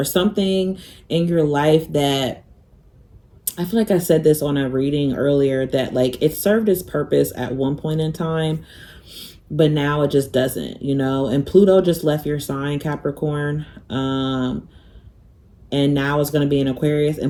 something in your life that, I feel like I said this on a reading earlier, that like it served its purpose at one point in time, but now it just doesn't, you know. And Pluto just left your sign, Capricorn. And now it's going to be in Aquarius. And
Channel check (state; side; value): identical; both; correlation 1.00